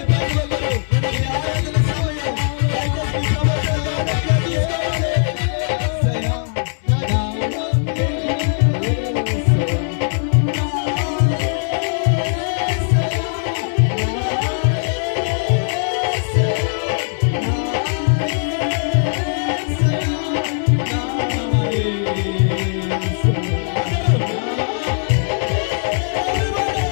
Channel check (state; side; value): silent; right; 66 dB below the other